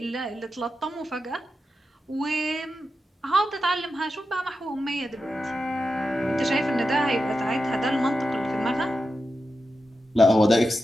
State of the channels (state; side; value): normal; both; correlation 0.90